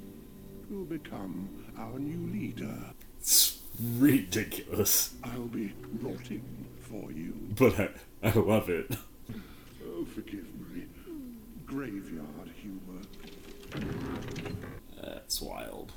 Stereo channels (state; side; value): identical; both; correlation 1.00